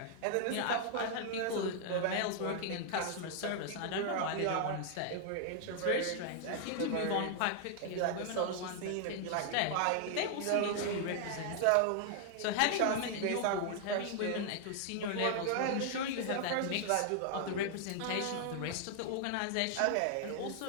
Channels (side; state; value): both; different; correlation 0.00